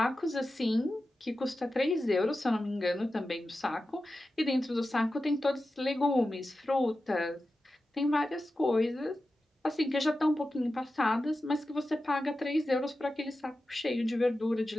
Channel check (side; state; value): both; normal; correlation 0.93